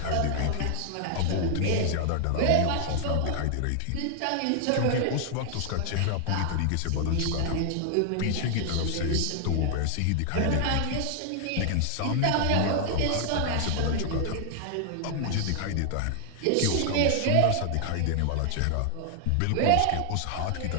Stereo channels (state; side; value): different; both; correlation 0.00